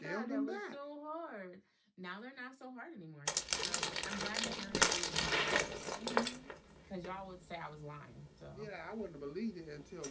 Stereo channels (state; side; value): identical; both; correlation 1.00